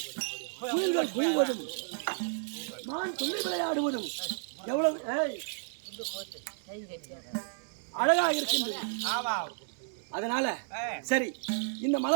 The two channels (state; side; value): silent; left; digital silence